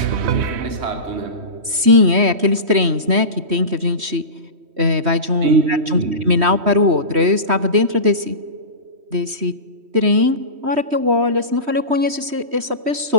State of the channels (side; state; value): left; late; 3.1 ms